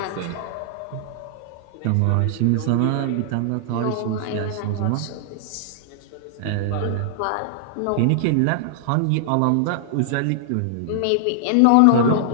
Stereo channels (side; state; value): both; different; correlation -0.01